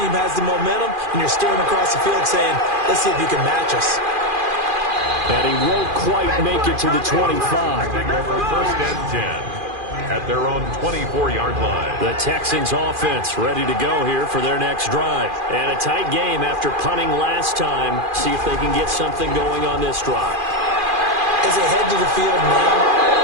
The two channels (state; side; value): late; left; 2.4 ms